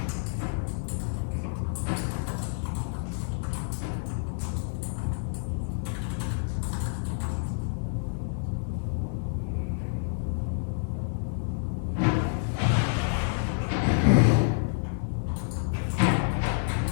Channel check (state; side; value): silent; right; digital silence